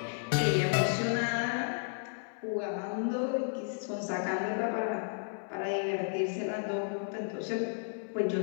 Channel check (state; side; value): silent; right; 56 dB below the other